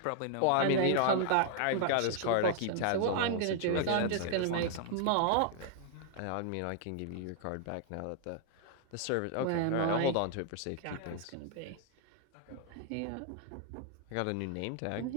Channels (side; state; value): both; different; correlation 0.00